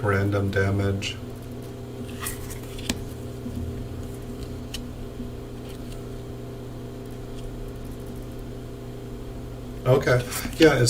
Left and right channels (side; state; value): both; identical; correlation 1.00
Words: random damage. Okay, yeah,